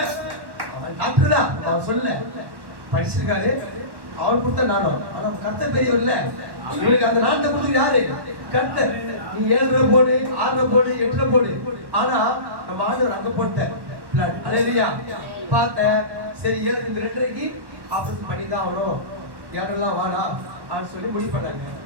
டாக்டர் தான், அவன் சொல்ல படிச்சிருக்காரு, அவர் கொடுத்த நானும். ஆனா கர்த்தர் பெரியவர் இல்ல, இவனுக்கு அந்த நாட்டை கொடுத்து யாரு? கர்த்தர். நீ 7 போடு, 6 போடு, 8 போடு, ஆனா நம்ம ஆண்டவர் அங்க போட்ட பிளான். அல்லேலூயா. பார்த்தேன், சரி 2:30க்கு ஆபரேஷன் பண்ணி தான் ஆகணும், ஏடெல்லாம் வாடா அப்படின்னு சொல்லி முடிவு பண்ணாங்க.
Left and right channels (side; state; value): left; late; 1.1 ms